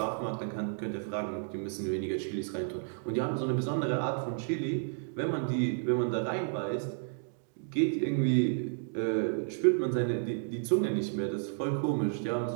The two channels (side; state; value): left; silent; digital silence